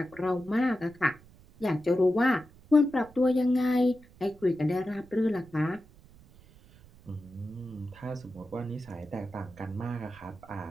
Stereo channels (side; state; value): right; noise; rumble, 24 dB below the sound